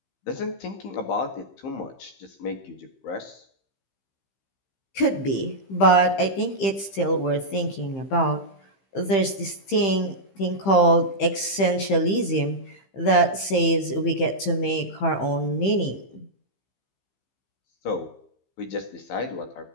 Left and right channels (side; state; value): right; late; 15 ms